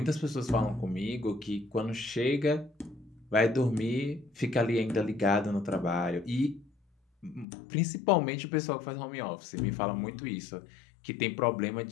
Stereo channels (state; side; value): drops out; right; at 7.5 s